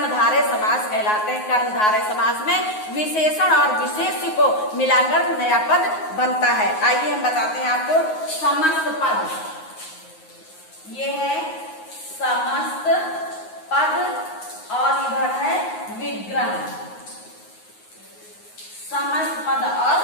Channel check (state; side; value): late; right; 9.5 ms